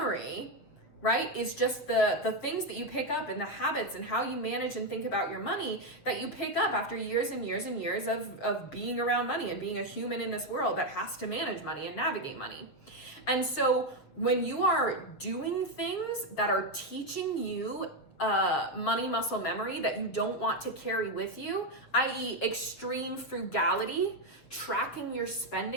right, is just the things that you pick up and the habits and how you manage and think about your money that you pick up after years and years and years of being around money and being a human in this world that has to manage money and navigate money. And so when you are doing things that are teaching you money muscle memory that you don't want to carry with you, i.e. extreme frugality, tracking your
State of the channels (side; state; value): right; late; 7.5 ms